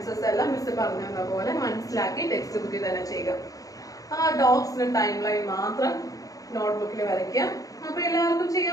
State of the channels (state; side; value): late; right; 0.17 ms